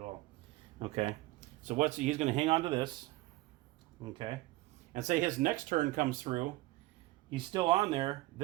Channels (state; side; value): quieter; left; 18.9 dB